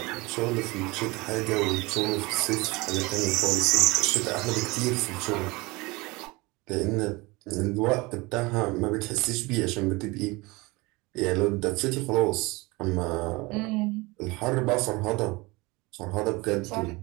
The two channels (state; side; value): quieter; left; 23.8 dB